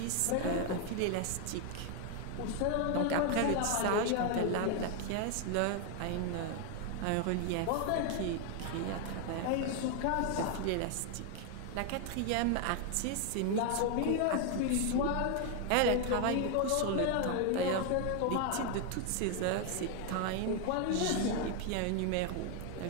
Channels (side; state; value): both; different; correlation 0.01